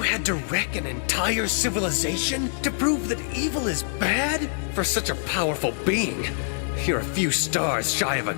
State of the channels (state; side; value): silent; right; 62 dB below the other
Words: to wreck an entire civilization to prove that evil is bad? For such a powerful being, you're a few stars shy of a